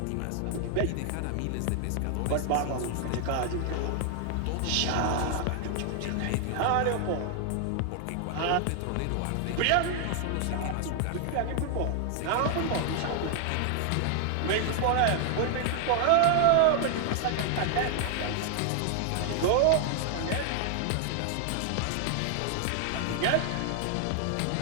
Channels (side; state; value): both; different; correlation 0.00